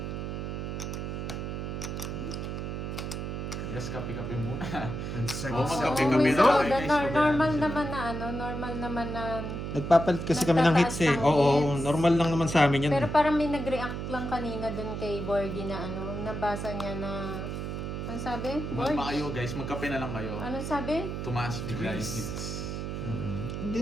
Yes, kape-kape muna. Ang Oo, sagis. magkape-kape Oo, na lang, guys. normal naman na ano, normal naman na. Nagpapalit kasi kami ng hits eh. Nagtataas ng Oo, hits. normal lang naman sa amin yan. Pero parang may nag-react lang kanina dun kay Bordy na ano, nabasa niya na, ano sabi? Bordy? Kumalma kayo guys, magkape na lang kayo. Ano sabi? Tumaas bigla yung hits. Hindi,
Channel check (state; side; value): noise; right; hum, 4 dB below the sound